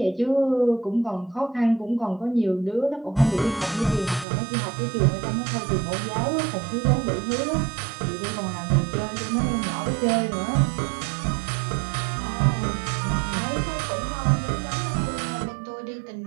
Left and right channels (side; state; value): left; drops out; at 4.2 s